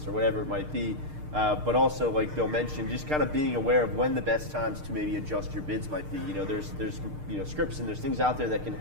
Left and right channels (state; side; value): late; left; 6.6 ms